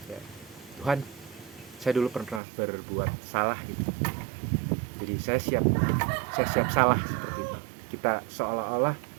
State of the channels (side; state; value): left; drops out; at 2.4 s